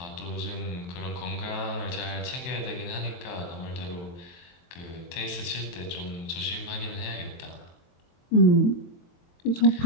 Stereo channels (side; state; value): right; late; 23 ms